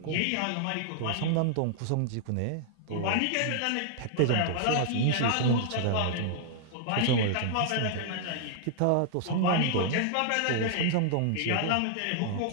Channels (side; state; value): both; different; correlation -0.01